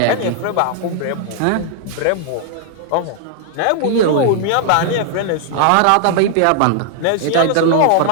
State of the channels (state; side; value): different; both; correlation 0.00